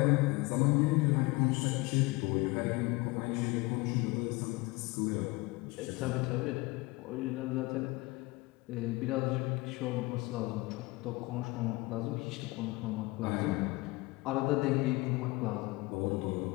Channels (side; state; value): right; quieter; 22.8 dB